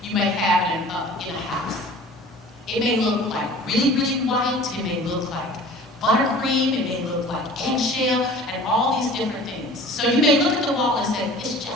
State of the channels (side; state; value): both; normal; correlation 0.44